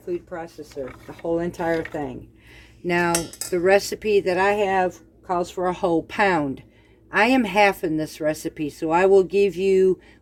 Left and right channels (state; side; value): identical; both; correlation 1.00